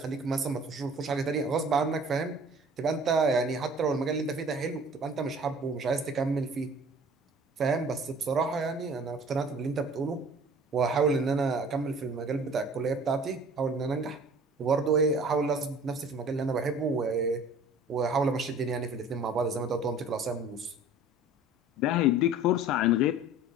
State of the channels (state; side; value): normal; both; correlation 0.47